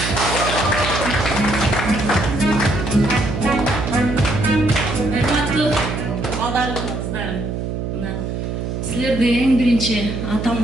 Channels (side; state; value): right; noise; hum, 4 dB below the sound